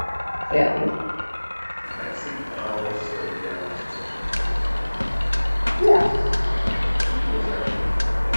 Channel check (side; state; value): both; inverted; correlation -1.00